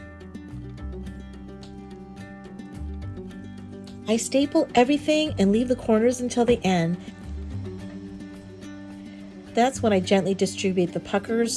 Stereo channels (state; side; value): identical; both; correlation 1.00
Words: I staple everything and leave the corners until the end. That's when I gently distribute the puckers